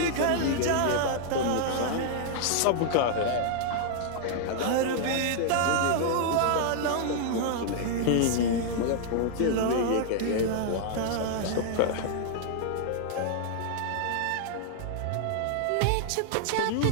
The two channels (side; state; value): both; different; correlation -0.01